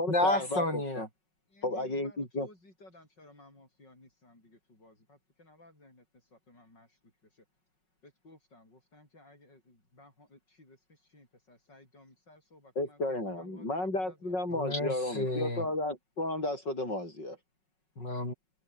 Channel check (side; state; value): right; late; 5.4 ms